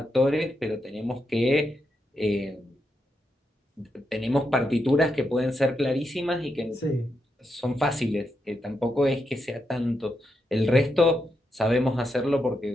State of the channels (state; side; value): normal; both; correlation 0.84